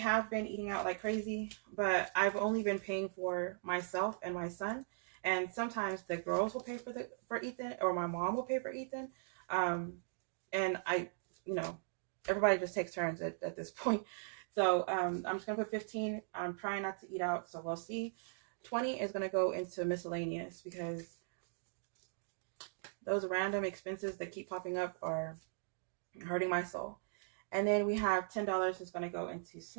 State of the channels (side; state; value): left; silent; digital silence